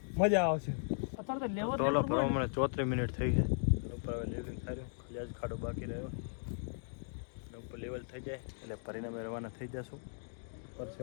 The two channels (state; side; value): silent; right; digital silence